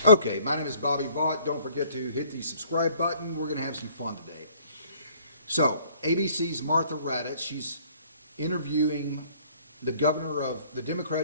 Okay, my name is Bobby Vaught. Don't forget to hit the subscribe button. We're going to have some fun today. So, ABC's Martha Raddatz, she's interviewing the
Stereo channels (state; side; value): inverted; both; correlation -0.58